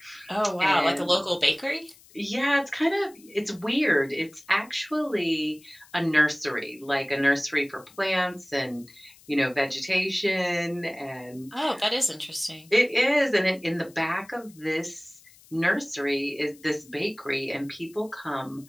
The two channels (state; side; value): noise; left; hiss, 25 dB below the sound